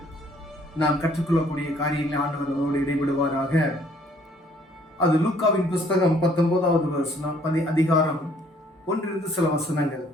நாம் கற்றுக்கொள்ளக்கூடிய காரியங்களை ஆண்டவர் நம்மளோடு இடைபடுவாராக. அது லூக்காவின் புஸ்தகம் 19வது அதிகாரம் 1 சில வசனங்கள்.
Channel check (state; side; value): normal; both; correlation 0.61